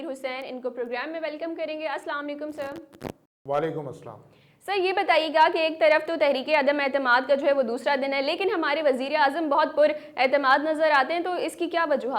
हुसैन। इनको प्रोग्राम में वेलकम करेंगे। अस्सलाम वालेकुम सर। वालेकुम अस्सलाम। सर, ये बताइएगा कि एक तरफ तो तहरीक अदम एतमाद का जो है वो दूसरा दिन है, लेकिन हमारे वज़ीर आज़म बहुत पुरएतमाद नज़र आते हैं, तो इसकी क्या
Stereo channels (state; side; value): identical; both; correlation 1.00